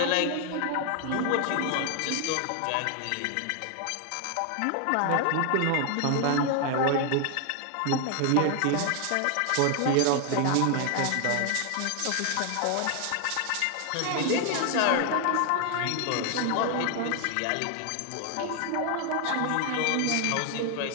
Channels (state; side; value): different; both; correlation 0.00